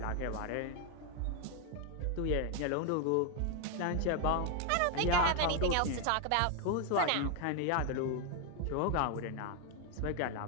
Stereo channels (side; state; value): both; different; correlation 0.01